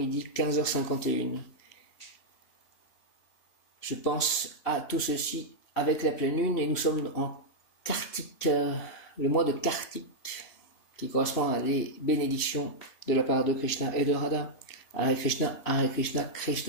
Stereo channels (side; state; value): right; late; 3.1 ms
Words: 15h51. Je pense à tout ceci avec la pleine lune et nous sommes en Kartik, le mois de Kartik, qui correspond à des bénédictions de la part de Krishna et de Radha. Hare Krishna,